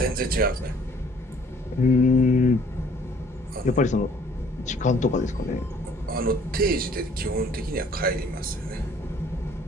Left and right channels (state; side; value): normal; both; correlation 0.58